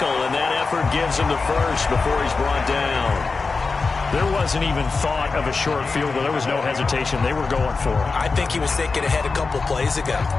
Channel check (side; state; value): right; quieter; 4.3 dB